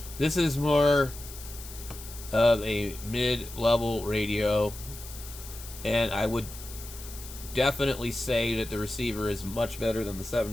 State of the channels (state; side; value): noise; left; hiss, 14 dB below the sound